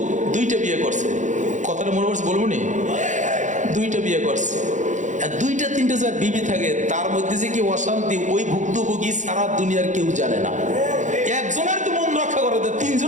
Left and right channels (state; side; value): late; left; 0.35 ms